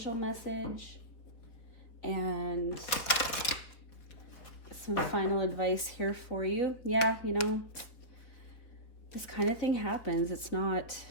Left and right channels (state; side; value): late; right; 4.1 ms